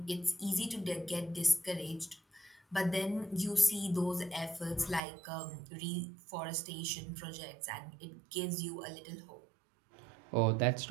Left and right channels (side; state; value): left; drops out; at 5.0 s